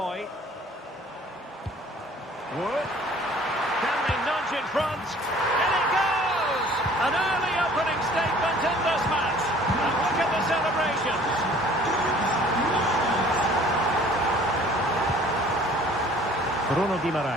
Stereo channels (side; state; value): both; normal; correlation 0.52